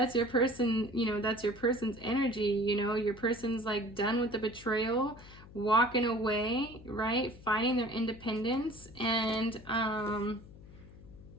your person, you know, that's your person's energy, you know, your person's like done with the betrayal, walking away, right? Finding their independence. And,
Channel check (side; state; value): left; noise; hum, 19 dB below the sound